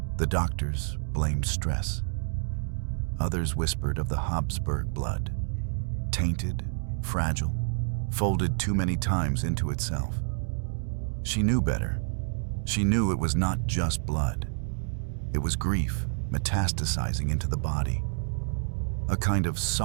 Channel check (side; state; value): left; silent; digital silence